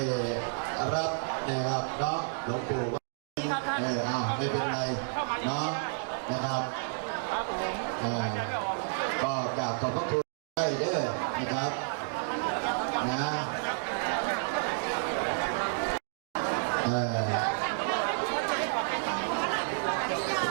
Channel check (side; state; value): left; silent; digital silence